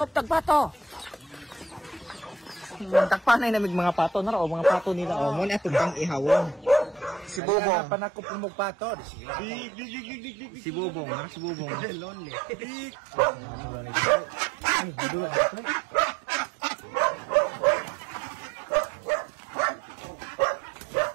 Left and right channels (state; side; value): drops out; left; at 7.4 s